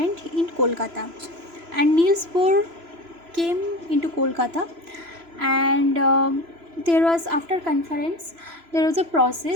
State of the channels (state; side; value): late; left; 3.0 ms